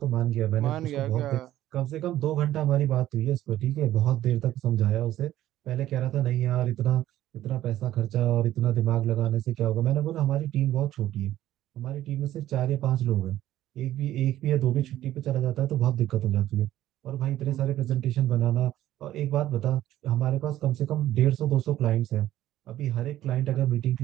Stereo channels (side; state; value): left; quieter; 13.6 dB